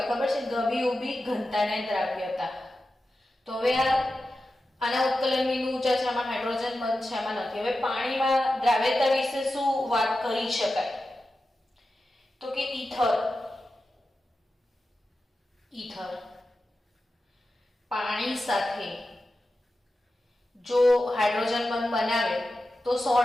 ખબર છે? ગભી ઊભી ઘનતા ને દ્રાવ્યતા. તો હવે આના ઉત્કલન બિંદુ ઊંચા છે, આમાં હાઇડ્રોજન બંધ છે, આમાં નથી. હવે પાણીમાં દ્રાવ્યતા વિશે શું વાત કરી શકાય? તો કે ઈથર પાણી સાથે જો હાઇડ્રોજન બંધ બનાવે તો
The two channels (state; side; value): normal; both; correlation 0.92